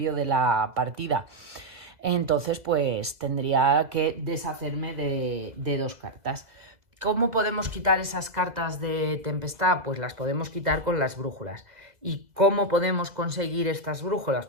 de la partida. Entonces pues tendría que deshacerme de 2 cartas. ¿Cómo podemos quitar esas cartas de tempestad? Pues las podemos quitar con las brújulas. ¿Y cómo podemos conseguir estas brújulas?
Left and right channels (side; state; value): left; late; 2.0 ms